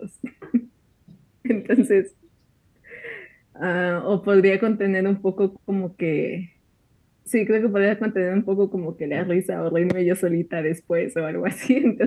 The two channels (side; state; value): both; identical; correlation 1.00